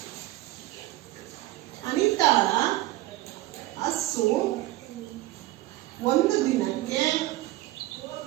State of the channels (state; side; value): quieter; left; 17.0 dB